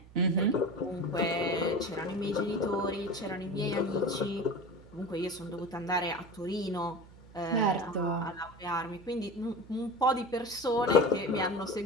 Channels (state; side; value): noise; right; hum, 21 dB below the sound